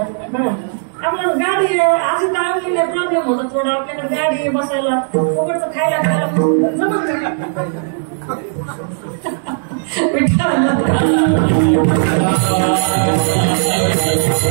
आपल्याला गाडी अशी टाळलेली प्रॉब्लेम होता थोडा. आपल्याकडे गाडी बसायला उघडचं खायला जमत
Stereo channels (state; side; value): silent; left; digital silence